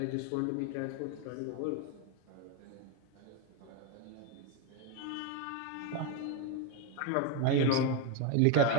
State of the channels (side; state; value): both; different; correlation 0.02